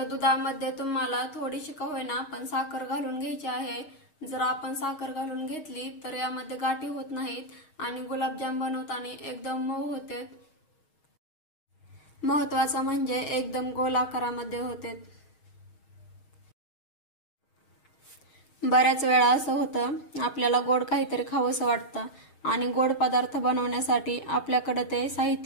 दुधामध्ये तुम्हाला थोडीशी का होईना पण साखर घालून घ्यायची आहे. जर आपण साखर घालून घेतली तर यामध्ये गाठी होत नाहीत आणि गुलाबजाम बनवताना एकदम मऊ होते. महत्वाचं म्हणजे एकदम गोल आकारामध्ये होते. बऱ्याच वेळा असं होतं, आपल्याला गोड काहीतरी खावंसं वाटतं आणि गोड पदार्थ बनवण्यासाठी आपल्याकडे ते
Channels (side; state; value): right; late; 6.4 ms